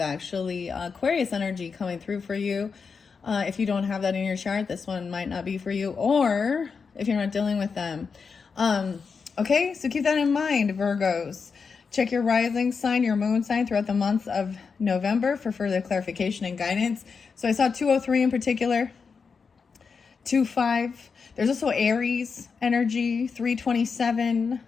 actually Aquarius energy coming through for you. If you don't have that in your chart, this one might not be for you, or if you're not dealing with them. Okay, so keep that in mind, Virgos. Check your rising sign, your moon sign throughout the month of November for further clarification and guidance. So I saw 203 in particular, 25. There's also Aries energy, 327,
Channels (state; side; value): quieter; right; 5.4 dB